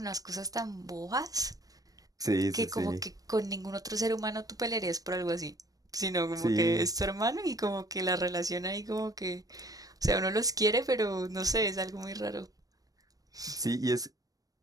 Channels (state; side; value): late; left; 0.18 ms